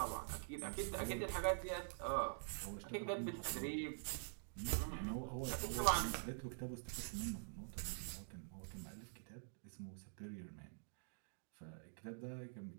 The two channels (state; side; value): silent; left; digital silence